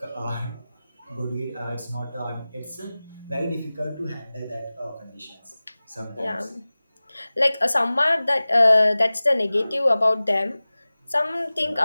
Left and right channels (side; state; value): both; inverted; correlation -0.98